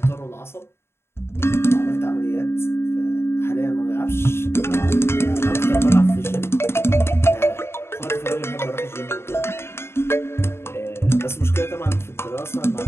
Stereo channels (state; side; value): late; right; 0.12 ms